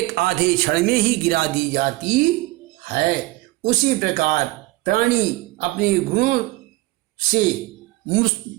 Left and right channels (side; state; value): left; quieter; 20.1 dB